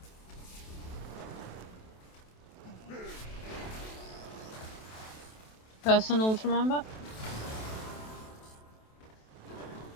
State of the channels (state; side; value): late; right; 27 ms